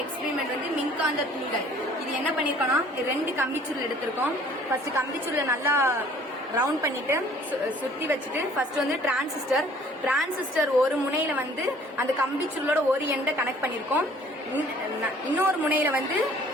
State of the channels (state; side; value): normal; both; correlation 0.55